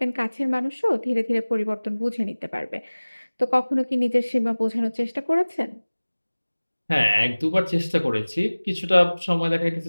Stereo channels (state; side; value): inverted; both; correlation -1.00